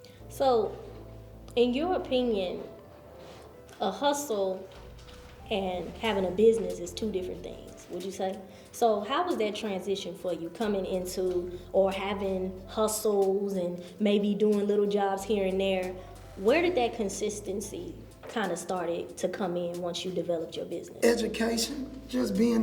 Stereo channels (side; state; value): both; identical; correlation 1.00